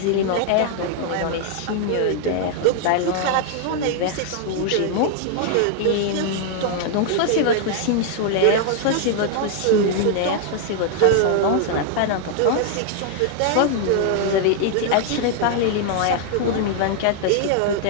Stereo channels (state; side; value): different; both; correlation 0.00